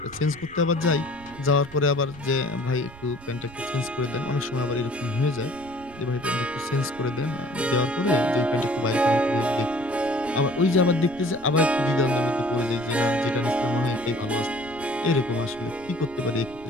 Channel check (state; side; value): noise; right; rumble, 20 dB below the sound